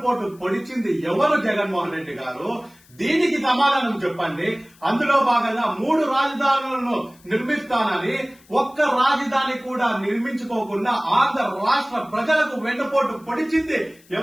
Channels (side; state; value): left; noise; hiss, 28 dB below the sound